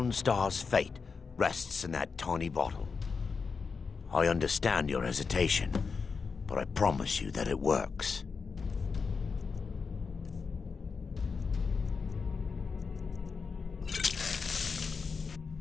fate rests in that tiny bottle. I understand your hesitation, but I promise you that it works.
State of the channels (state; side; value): quieter; right; 5.2 dB